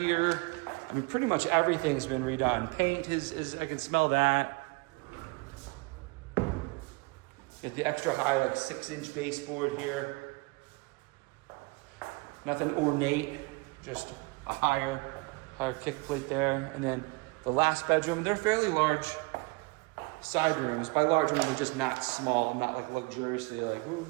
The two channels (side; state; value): left; quieter; 27.0 dB